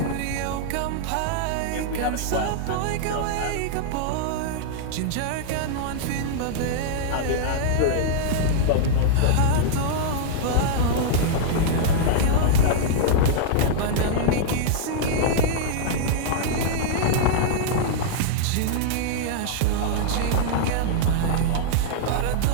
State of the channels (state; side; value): different; both; correlation -0.02